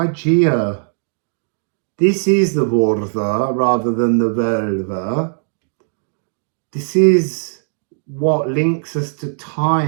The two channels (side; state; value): left; silent; digital silence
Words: This is the Vortha rather than the Velva. This is what links us to